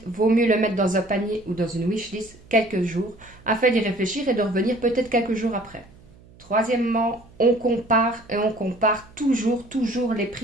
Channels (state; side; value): noise; right; hum, 25 dB below the sound